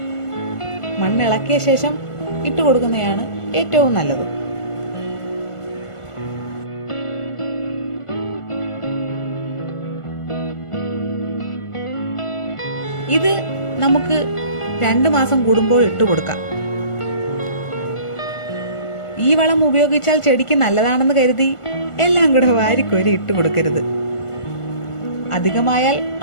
മണ്ണിളക്കിയ ശേഷം ഇട്ടുകൊടുക്കുന്നതാണ് ഏറ്റവും നല്ലത്. ഇത് നമുക്ക് 2 മാസം കൂടുമ്പോൾ ഇട്ടുകൊടുക്കാം. ഈ വളം ഉപയോഗിച്ചാൽ ചെടിക്ക് നല്ലതാണെന്ന് കരുതി എല്ലാം കൂടെ വാരിക്കോരി ഇട്ടുകൊടുക്കരുത്. അധികമായാൽ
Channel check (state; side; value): late; right; 1.5 ms